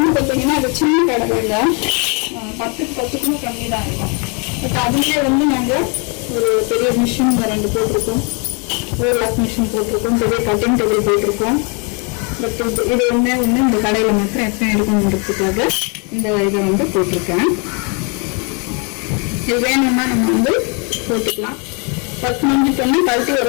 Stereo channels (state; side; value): quieter; right; 34.7 dB